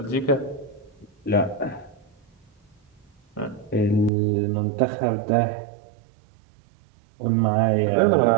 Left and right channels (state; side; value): drops out; left; at 4.1 s